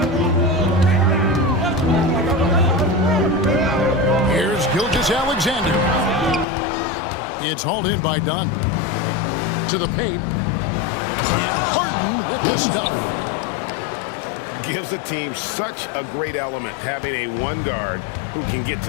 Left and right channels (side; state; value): right; drops out; at 6.5 s